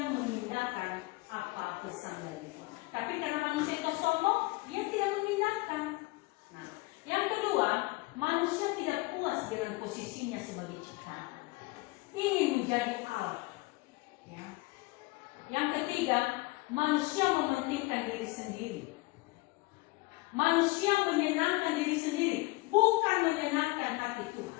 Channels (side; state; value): right; quieter; 22.7 dB